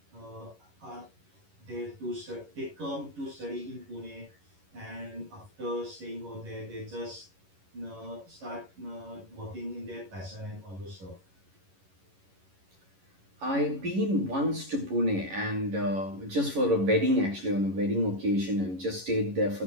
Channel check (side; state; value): left; late; 11 ms